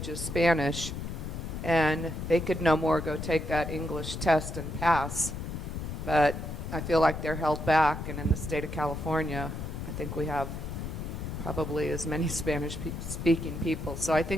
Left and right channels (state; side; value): noise; left; rumble, 6 dB below the sound